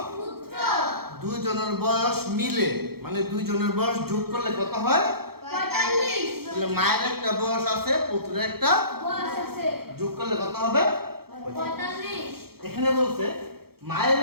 দুইজনের বয়স মিলে, মানে দুইজনের বয়স যোগ করলে কত হয়? ৪৫। মায়ের একটা বয়স আছে, পুত্রের একটা বয়স আছে, যোগ করলে কত হবে? ৪৫। এখানে বলছে মায়ের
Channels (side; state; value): left; late; 0.95 ms